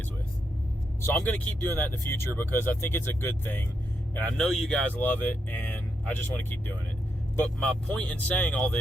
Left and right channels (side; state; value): both; normal; correlation 0.82